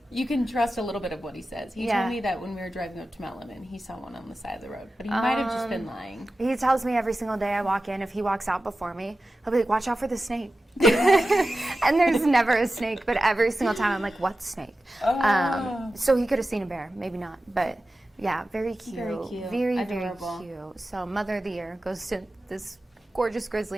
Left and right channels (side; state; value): both; normal; correlation 0.93